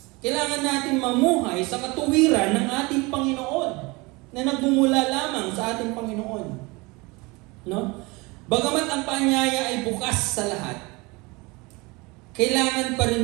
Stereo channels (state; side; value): quieter; left; 25.2 dB